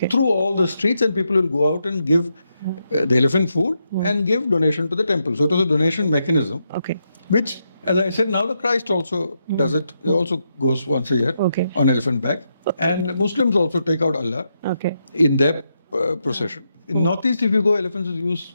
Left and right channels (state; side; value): inverted; both; correlation -0.83